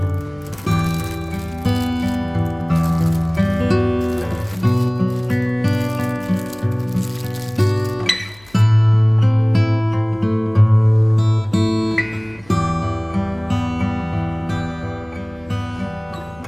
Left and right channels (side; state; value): left; noise; hum, 27 dB below the sound